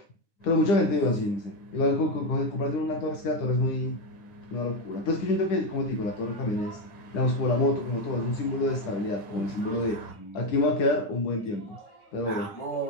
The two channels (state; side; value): late; right; 9.5 ms